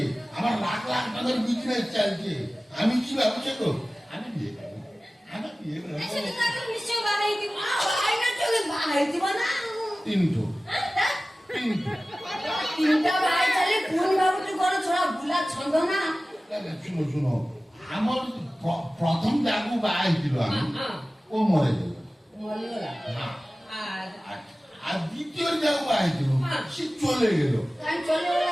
আমার লাখ লাখ টাকার বিজনেস চলছে। আমি কি ভাবছি তো, আমি বিয়ে করবো, আমি বিয়ে করবো। ऐसे तो ताको निश्चय बागे की। ଭାଇ ନା ଚলে ବାହାଇ দিব ନା। তিনটো हां তিনটো তিনটা ভাই চালি পুন ভাবুଛୁ ঘর ଛଡା ବୁଲା ଛନ୍ଦ ନା। শুনো শুনো, আমার প্রথম যাগু বাହା হয়েছিল আমি, ও মরে গেল। মরিগলা। হ্যাঁ। আর আর দ্বিতীয় যাগু বাହା হয়েছিল, সে চলে গেল। কাই চলে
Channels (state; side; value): normal; both; correlation 0.97